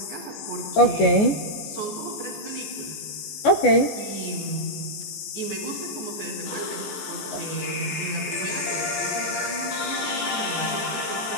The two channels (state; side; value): late; right; 14 ms